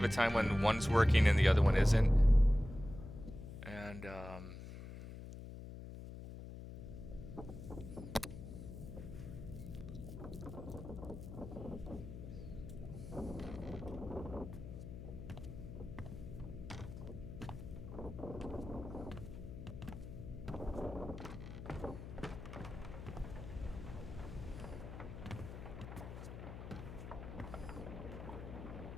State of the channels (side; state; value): left; noise; hum, 10 dB below the sound